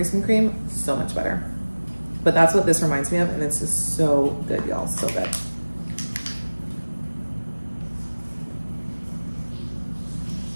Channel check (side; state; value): both; inverted; correlation -1.00